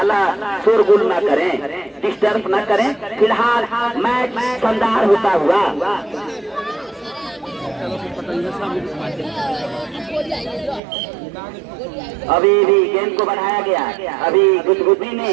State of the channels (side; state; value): left; drops out; at 10.8 s